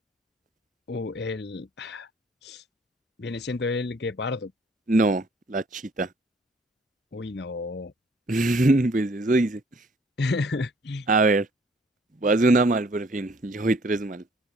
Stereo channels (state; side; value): normal; both; correlation 0.59